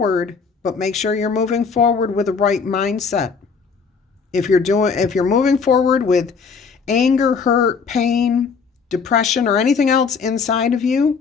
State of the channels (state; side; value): quieter; right; 5.5 dB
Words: but make sure you're moving forward with the right mindset. If you're moving forward with anger, hurt, pain, depression, or anything else inside of you,